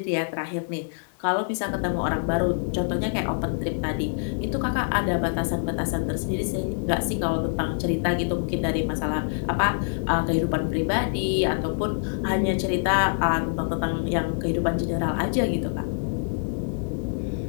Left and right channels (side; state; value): right; silent; digital silence